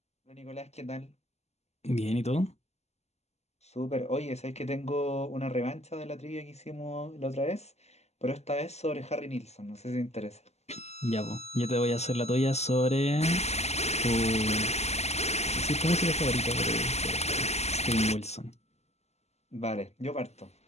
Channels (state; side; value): late; right; 0.32 ms